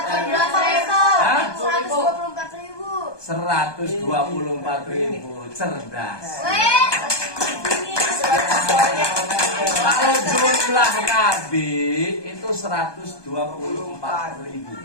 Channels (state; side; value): late; right; 1.2 ms